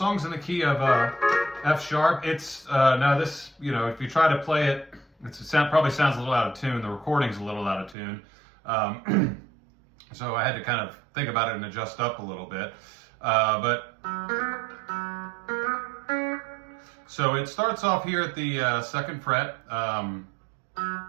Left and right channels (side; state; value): left; drops out; at 8.0 s